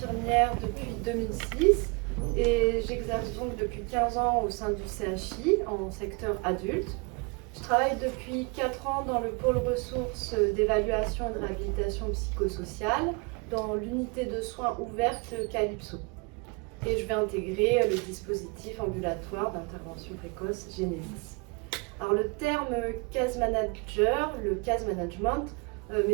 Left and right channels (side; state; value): left; quieter; 30.3 dB